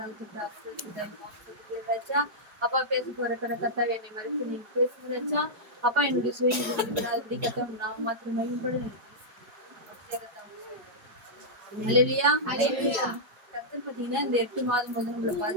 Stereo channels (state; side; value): late; left; 4.8 ms